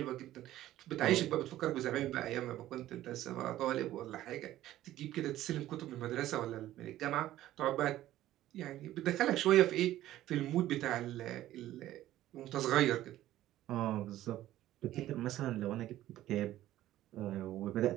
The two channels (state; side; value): quieter; left; 14.1 dB